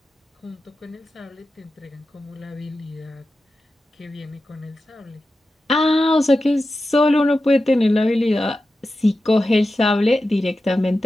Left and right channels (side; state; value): both; normal; correlation 0.92